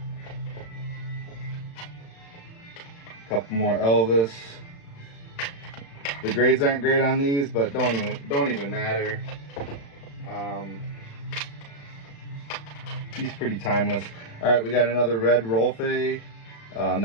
Couple more Elvis. The grades aren't great on these, but don't even matter. He's pretty timeless. All right, we got another red Rolfe,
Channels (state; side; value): late; right; 35 ms